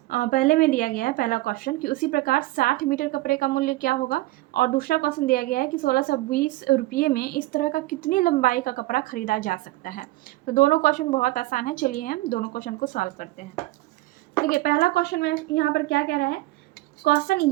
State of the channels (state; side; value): quieter; left; 18.8 dB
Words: पहले में दिया गया है पहला क्वेश्चन कि उसी प्रकार 60 मीटर कपड़े का मूल्य क्या होगा, और दूसरा क्वेश्चन दिया गया है कि 1620 रुपये में इस तरह का कितनी लंबाई का कपड़ा खरीदा जा सकता है। तो दोनों क्वेश्चन बहुत आसान है, चलिए हम दोनों क्वेश्चन को सॉल्व करते हैं। देखिए, पहला क्वेश्चन में यहाँ पर क्या कह रहा है, क्वेश्चन